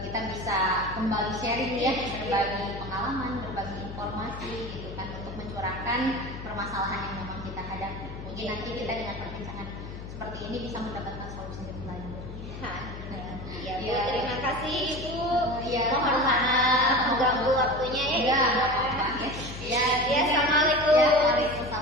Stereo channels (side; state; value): left; noise; hum, 11 dB below the sound